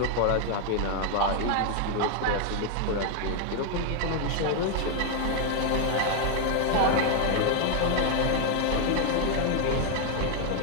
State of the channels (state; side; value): different; both; correlation 0.00